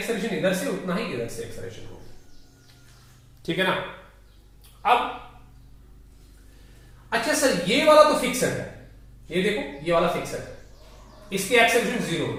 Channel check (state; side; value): identical; both; correlation 1.00